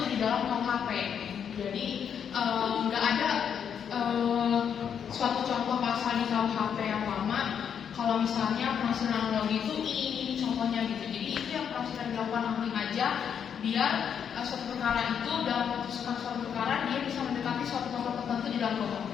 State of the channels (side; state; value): right; quieter; 7.9 dB